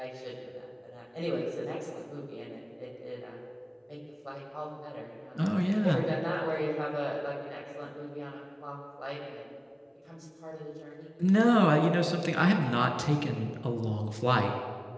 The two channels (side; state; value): both; identical; correlation 1.00